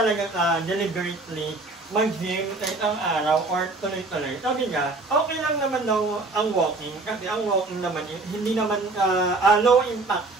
ka deliberately mag-gym sa isang araw or tuloy-tuloy. Sabi niya, okay lang naman daw ang walking kasi ang walking naman hindi naman low impact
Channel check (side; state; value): left; quieter; 3.3 dB